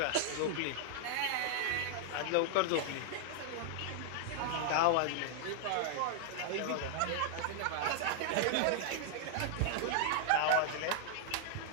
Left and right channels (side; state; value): both; different; correlation 0.00